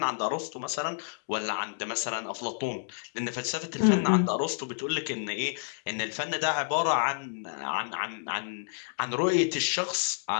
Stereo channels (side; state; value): right; silent; digital silence